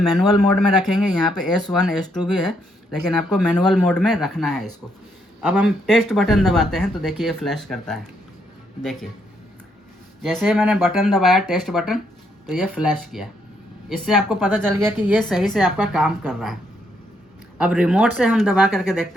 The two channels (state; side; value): normal; both; correlation 0.74